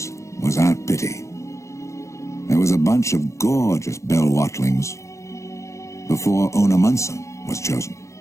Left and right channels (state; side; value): late; right; 0.15 ms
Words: was Aunt Pitty. There was a bunch of gorgeous Belle Watlings before Ona Munson was chosen.